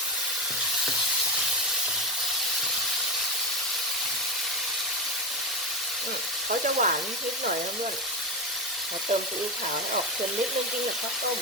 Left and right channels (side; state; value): both; normal; correlation 0.15